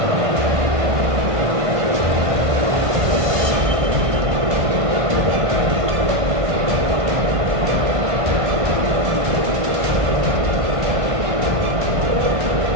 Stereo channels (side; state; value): left; late; 1.5 ms